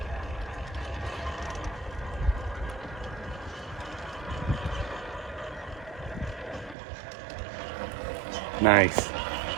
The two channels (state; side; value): drops out; left; at 6.8 s